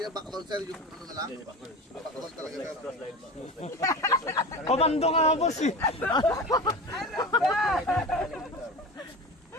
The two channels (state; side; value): normal; both; correlation 0.31